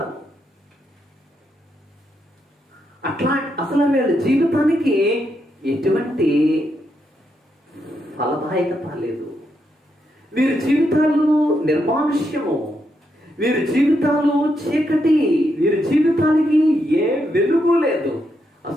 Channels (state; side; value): normal; both; correlation 0.80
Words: అట్లా అసలు వీళ్ళ జీవితానికి ఎటువంటి ఫలదాయకత లేదు. వీరి జీవితాలు నిర్మానుష్యము, వీరి జీవితాలు చీకటి, వీరి జీవితానికి ఏ వెలుగు లేదు.